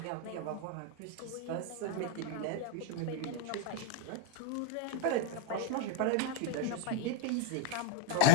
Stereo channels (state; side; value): different; both; correlation 0.01